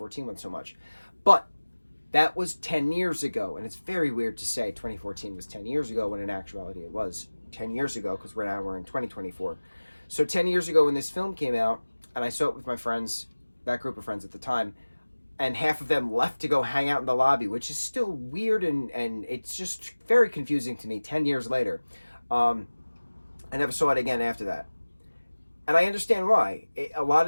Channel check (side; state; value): both; inverted; correlation -1.00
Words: one so much. But that was 10 years ago, and it's very weird to say 2014 was 10 years ago when in actuality it was 10 years ago because we're in 2024. So 10 years ago when this film came out, and I saw it with my friends, that group of friends at the time, and half of them left to go hang out in the lobby, which is still weird, and it's just very confusing to me 10 years later. I never saw it again after that. And I understand why. A lot